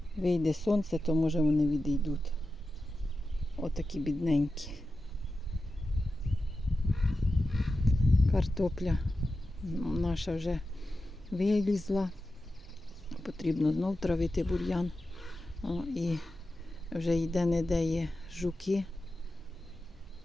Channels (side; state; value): both; normal; correlation 0.92